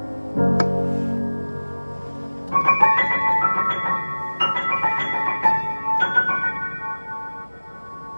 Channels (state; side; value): inverted; both; correlation -1.00